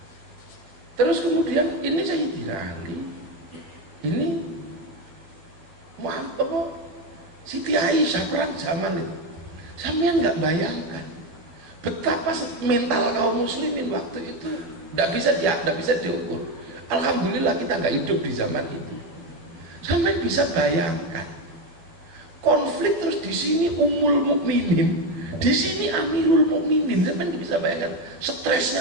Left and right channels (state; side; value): late; left; 12 ms